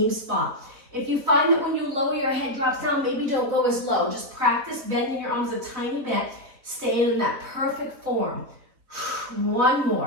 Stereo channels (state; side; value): late; left; 4.1 ms